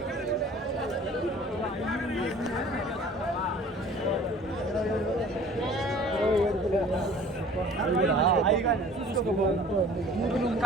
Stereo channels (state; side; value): normal; both; correlation 0.48